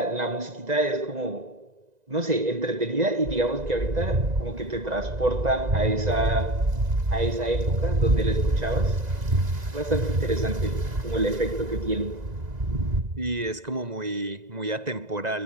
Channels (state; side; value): late; left; 2.0 ms